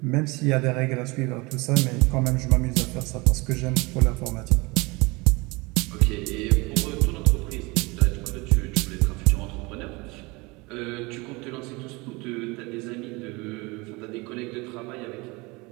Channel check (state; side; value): quieter; left; 25.2 dB